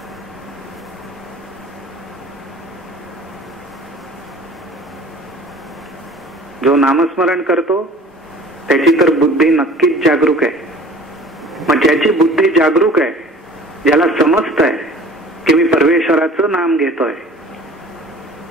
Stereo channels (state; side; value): normal; both; correlation 0.46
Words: जो नामस्मरण करतो त्याची तर बुद्धी नक्कीच जागरूक आहे. मग ज्याची बुद्धी जागरूक आहे, ज्याला समजत आहे की मी परमेश्वराचं नाम घेतोय,